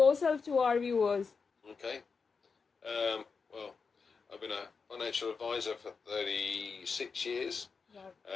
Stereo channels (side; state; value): right; quieter; 5.1 dB